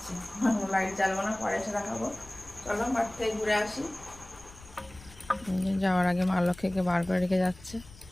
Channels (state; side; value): noise; left; rumble, 20 dB below the sound